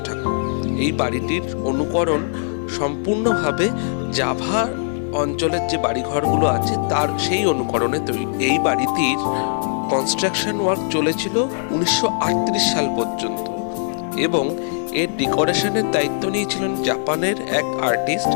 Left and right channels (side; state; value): right; silent; digital silence